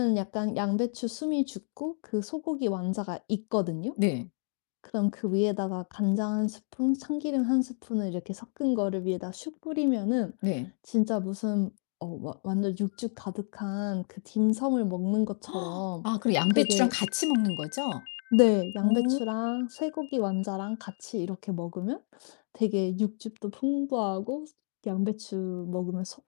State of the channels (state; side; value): silent; right; 58 dB below the other